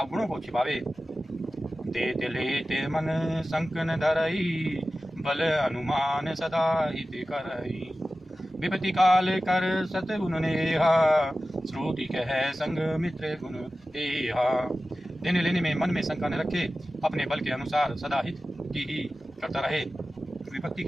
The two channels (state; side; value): normal; both; correlation 0.95